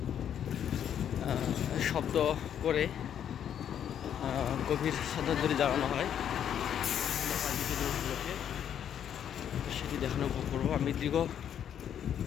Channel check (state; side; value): quieter; right; 9.3 dB